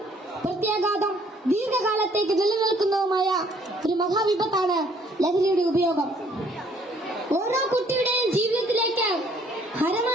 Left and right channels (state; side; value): normal; both; correlation 0.62